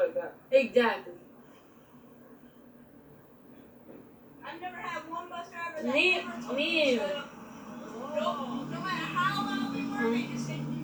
that. Exactly. I've never had one bus driver that Me ever told either. shut up. No matter how loud we were, they just said, you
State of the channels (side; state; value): both; identical; correlation 1.00